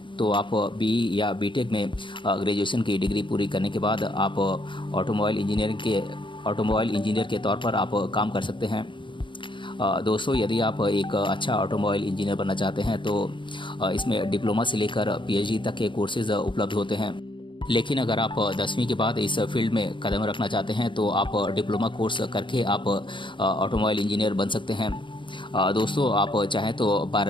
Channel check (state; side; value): late; right; 0.24 ms